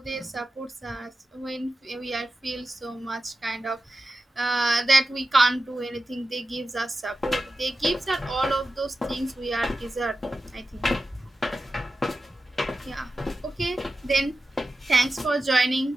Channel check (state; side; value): normal; both; correlation 0.93